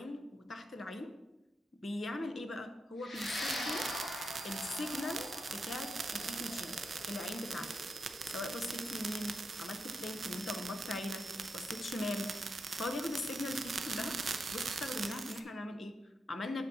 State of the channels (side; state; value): both; normal; correlation 0.84